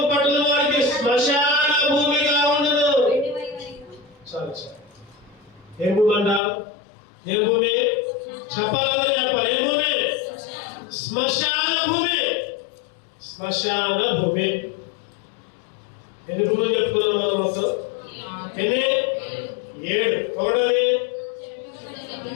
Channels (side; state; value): right; drops out; at 6.4 s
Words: పట్టణం వారికి శ్మశాన భూమిగా ఉండును. చాలు. ఏం భూమి అంట? ఏం భూమి? చెప్పాలి. ఏం భూమి? శ్మశాన భూమి. ఎన్ని భూములు చెప్పుకున్నాం మొత్తం? ఎన్ని? 7. ఒకటది